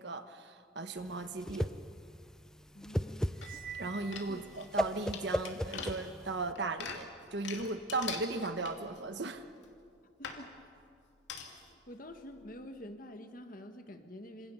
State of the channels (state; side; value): normal; both; correlation 0.41